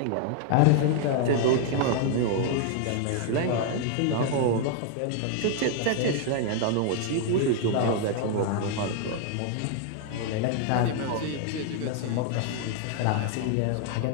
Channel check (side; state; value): both; different; correlation 0.00